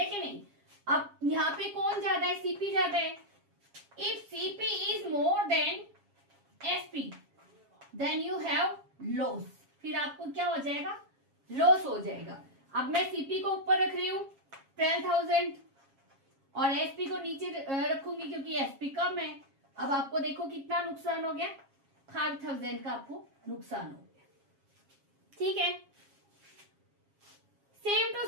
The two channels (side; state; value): left; late; 7.3 ms